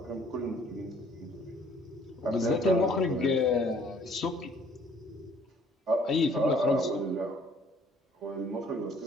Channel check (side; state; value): both; normal; correlation 0.58